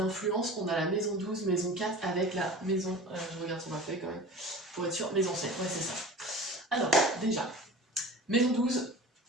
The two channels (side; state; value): both; normal; correlation 0.37